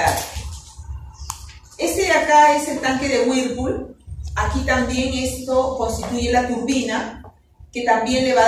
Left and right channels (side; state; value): both; identical; correlation 1.00